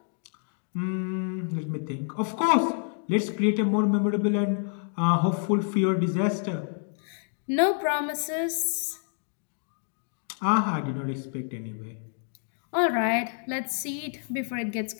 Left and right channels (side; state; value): right; silent; 59 dB below the other